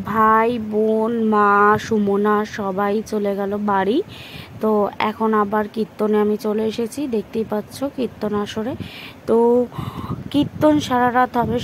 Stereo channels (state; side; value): identical; both; correlation 1.00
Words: ভাই বোন মা সুমনা সবাই চলে গেল বাড়ি। তো এখন আবার কীর্তনে আমি চলে এসেছি, দেখতেই পাচ্ছ কীর্তন আসরে। তো কীর্তন সারা রাত হবে,